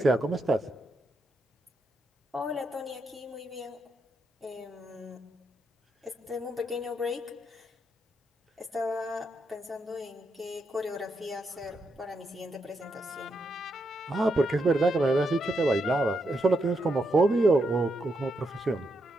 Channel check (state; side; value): normal; both; correlation 0.81